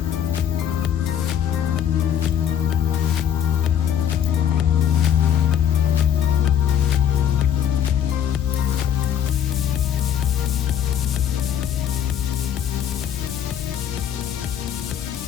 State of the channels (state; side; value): quieter; right; 9.4 dB